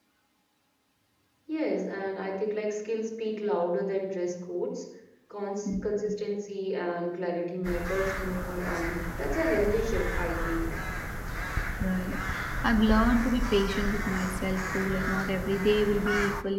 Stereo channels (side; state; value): both; identical; correlation 1.00